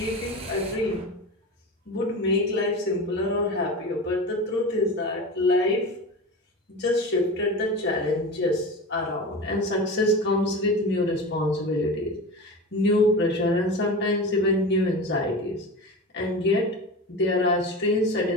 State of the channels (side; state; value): both; normal; correlation 0.28